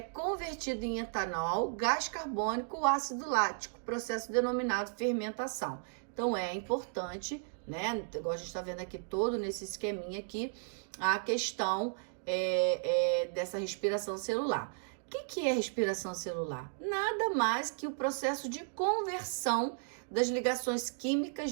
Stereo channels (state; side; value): silent; left; digital silence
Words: em etanol, gás carbônico, ácido lático, processo denominado fermentação. Então é importante, né? Igual a gente está vendo aqui todo nesse esqueminha aqui, a questão dessa respiração celular. O que é respiração celular? Nada mais que o processo de conversão das ligações químicas